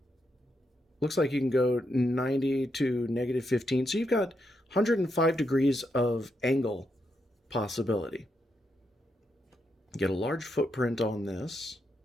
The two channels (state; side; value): normal; both; correlation 0.82